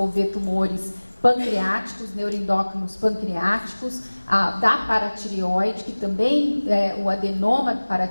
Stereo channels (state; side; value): inverted; both; correlation -1.00